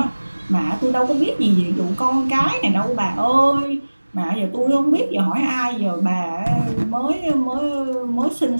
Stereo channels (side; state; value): both; inverted; correlation -1.00